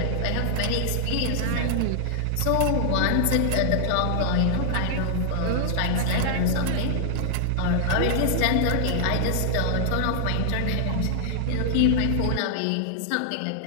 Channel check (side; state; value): both; different; correlation 0.00